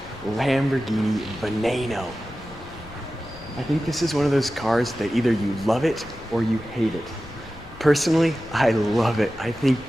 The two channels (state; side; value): noise; left; rumble, 20 dB below the sound